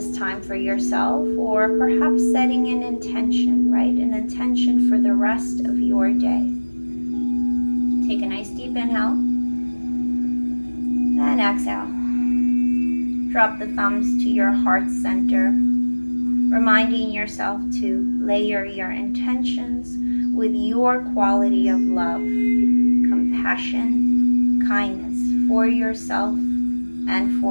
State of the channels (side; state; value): both; inverted; correlation -1.00